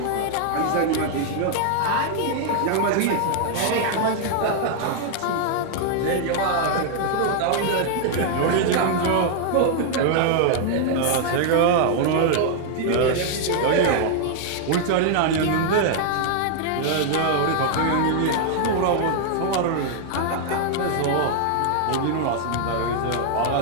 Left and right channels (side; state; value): both; different; correlation 0.00